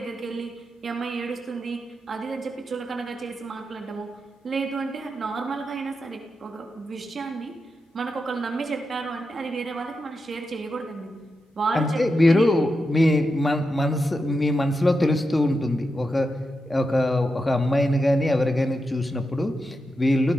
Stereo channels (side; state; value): both; normal; correlation 0.88